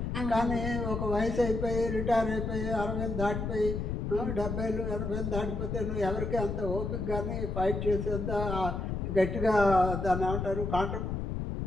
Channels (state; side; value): noise; left; rumble, 3 dB below the sound